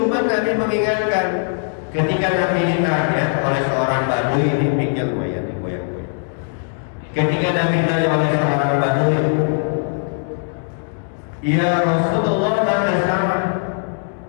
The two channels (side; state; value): right; silent; 66 dB below the other